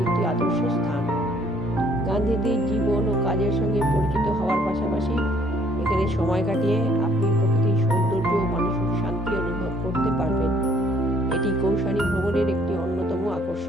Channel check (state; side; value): normal; both; correlation 0.63